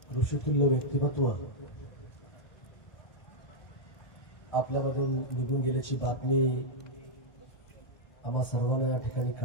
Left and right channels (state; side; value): late; right; 1.3 ms